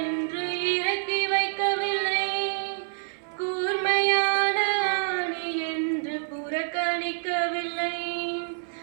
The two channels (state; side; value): silent; left; 56 dB below the other